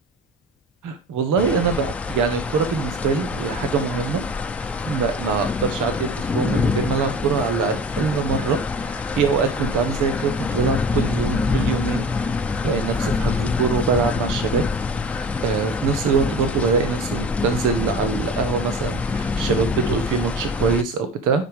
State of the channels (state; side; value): normal; both; correlation 0.37